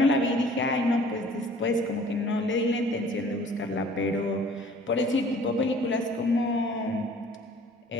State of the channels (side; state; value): both; normal; correlation 0.52